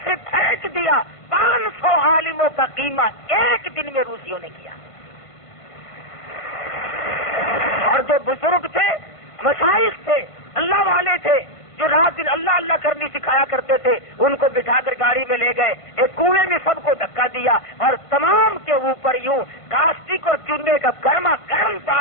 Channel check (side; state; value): right; late; 1.5 ms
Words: سے پھینک دیا۔ 500 عالموں کا قیمہ ایک دن میں روسیوں نے کیا، اور جو بزرگ تھے، مشائخ تھے، اللہ والے تھے، جو رات دن اللہ اللہ کرنی سکھایا کرتے تھے، ان کو بٹھا کر گاڑی میں لے گئے، ایک کنویں میں سب کو دھکا دیا اور تمام کے اوپر یوں کاسٹک اور چونے کا گرما گرم